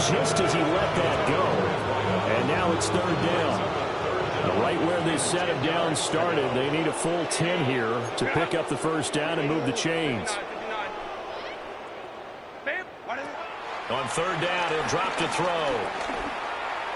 just as he let that go. And now it's third down. Right where this set of downs started, they need a full 10 here to pick up the first down and move the chains. On third down, he'll drop to throw.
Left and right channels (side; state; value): both; identical; correlation 1.00